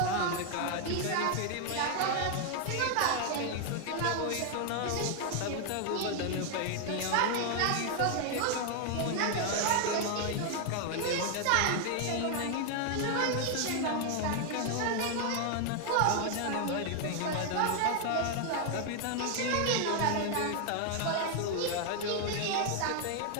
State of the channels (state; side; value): different; both; correlation 0.00